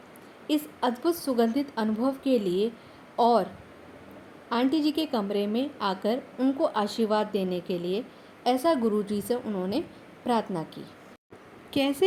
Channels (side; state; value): both; identical; correlation 1.00